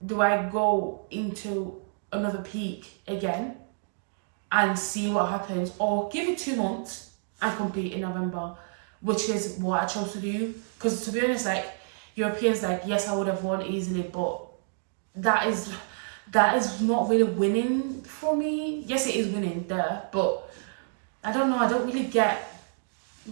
do I go into another peak again and see what happens, or give it 2 months and compete in November, which is what I chose to do. Because to be honest, like Europeans, like yes, I would have won easily, but that is not really winning for me. Yes, it is winning there, but I don't know, I don't really get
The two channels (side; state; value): left; silent; digital silence